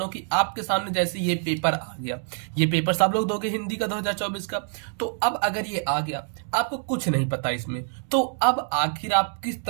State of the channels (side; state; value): left; silent; 61 dB below the other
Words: हूं कि आपके सामने जैसे ये पेपर आ गया, ये पेपर सब लोग दोगे हिंदी का 2024 का। तो अब अगर ये आ गया, आपको कुछ नहीं पता इसमें, तो अब आखिर आप किस